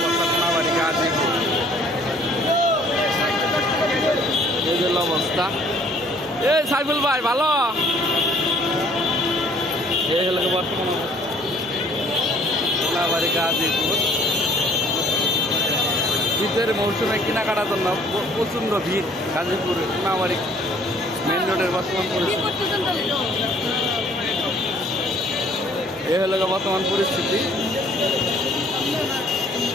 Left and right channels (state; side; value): normal; both; correlation 0.58